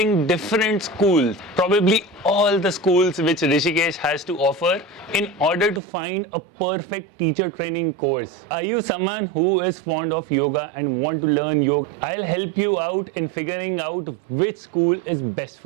different schools, probably all the schools which Rishikesh has to offer, in order to find a perfect teacher training course. Are you someone who is fond of yoga and want to learn yoga? I'll help you out in figuring out which school is best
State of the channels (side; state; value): left; drops out; at 5.8 s